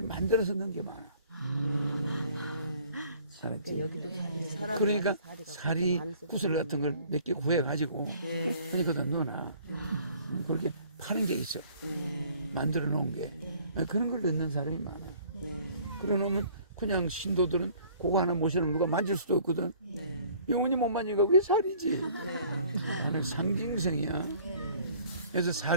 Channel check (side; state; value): both; inverted; correlation -0.54